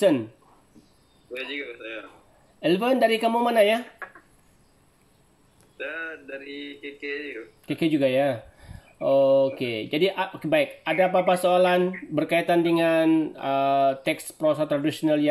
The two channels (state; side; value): identical; both; correlation 1.00